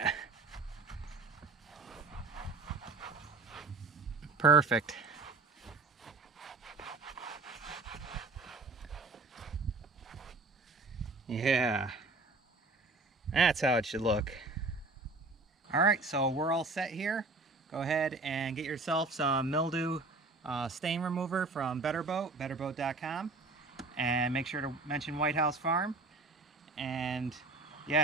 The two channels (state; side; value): quieter; left; 3.5 dB